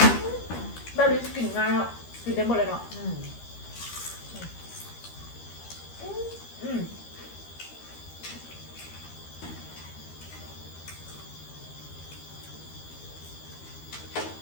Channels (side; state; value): right; late; 13 ms